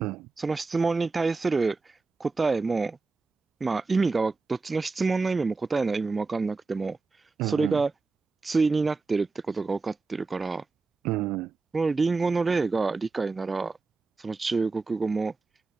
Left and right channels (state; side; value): quieter; left; 4.0 dB